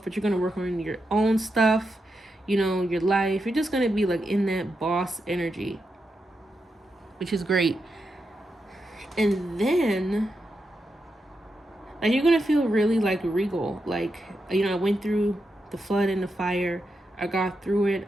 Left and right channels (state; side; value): normal; both; correlation 0.86